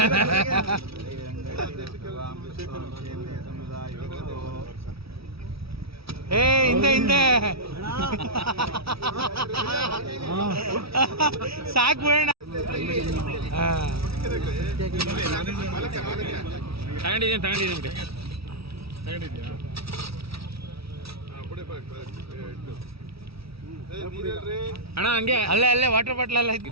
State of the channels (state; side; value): late; left; 0.76 ms